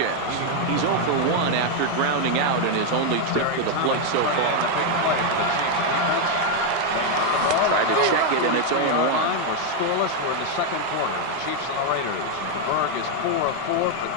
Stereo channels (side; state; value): both; different; correlation 0.01